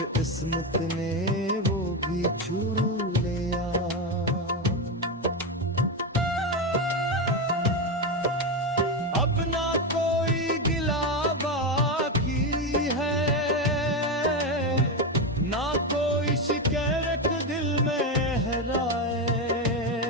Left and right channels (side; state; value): both; normal; correlation 0.12